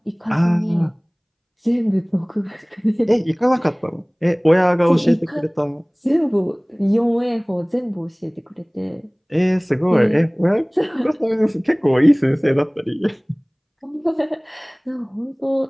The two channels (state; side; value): identical; both; correlation 1.00